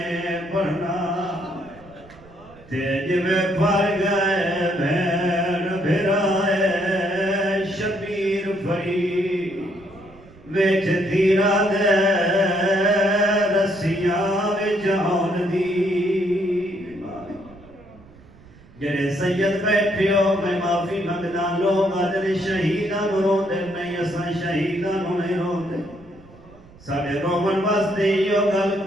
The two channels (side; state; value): right; noise; rumble, 23 dB below the sound